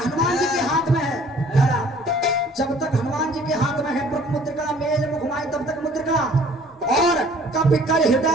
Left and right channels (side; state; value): both; normal; correlation 0.54